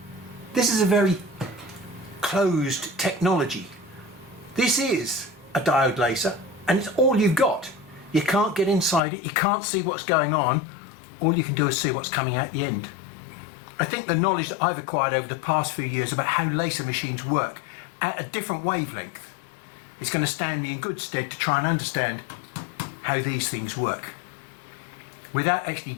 this is a very closed technology. This is a diode laser and it's all you've got. You can't get inside it, you can't see what's going on, all you can do is see what's coming out the end. I think the knowledge that I've acquired over the past few years about how laser machines work at a different wavelength is going to stand me in good stead to try and understand how these things work without actually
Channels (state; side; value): drops out; right; at 9.0 s